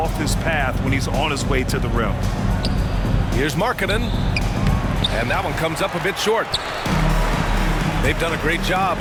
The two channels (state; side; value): identical; both; correlation 1.00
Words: his path when he's on his way to the rim. Here's Markkanen. And that one comes up a bit short. They've done a great job